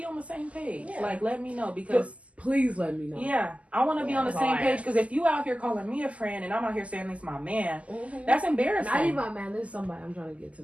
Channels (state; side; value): late; left; 0.066 ms